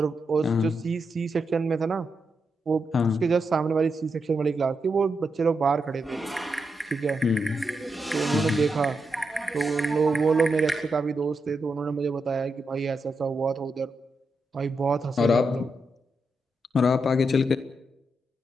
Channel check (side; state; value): both; normal; correlation 0.84